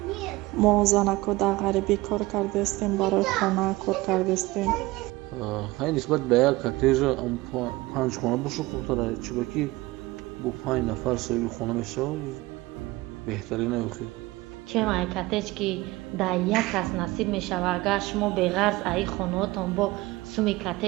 мо занако дар ғарибӣ кор кардастем, барои хона кор кардастем. ҳай нисбат ба як коттеҷа 5 хона боша хубтара, чиба ки бо 5 нафар соҳиби хона мешавад беҳтарина ёхи. чем ай коттеҷ ки дар як кас насиб мешава, агар шумо беғарз аи хонаотон бо суми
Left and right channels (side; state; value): left; quieter; 20.2 dB